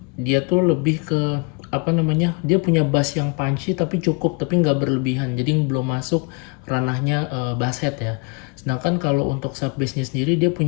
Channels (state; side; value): quieter; right; 31.5 dB